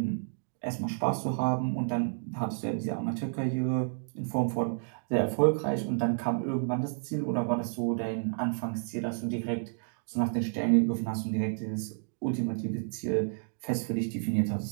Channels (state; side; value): silent; left; digital silence